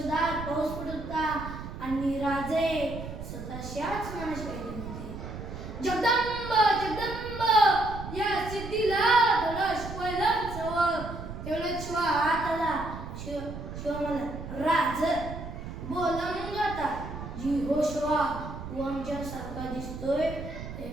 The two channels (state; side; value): noise; right; rumble, 9 dB below the sound